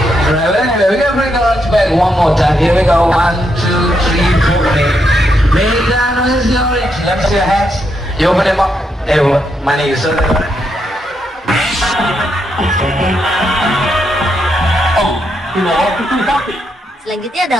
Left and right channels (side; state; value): both; normal; correlation 0.80